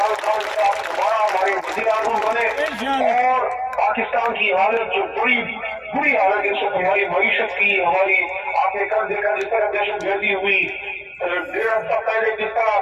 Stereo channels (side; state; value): both; identical; correlation 1.00